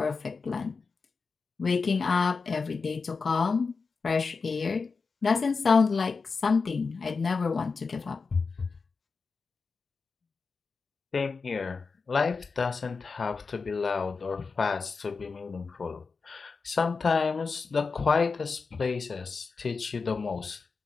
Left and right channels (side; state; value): right; quieter; 4.7 dB